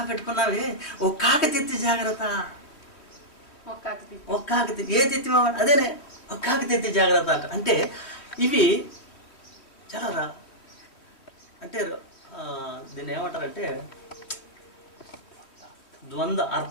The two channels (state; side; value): late; right; 3.2 ms